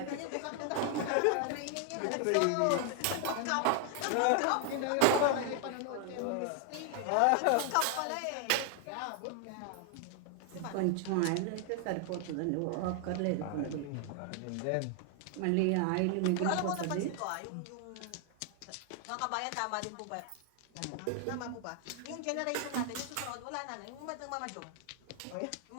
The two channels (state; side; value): different; both; correlation 0.00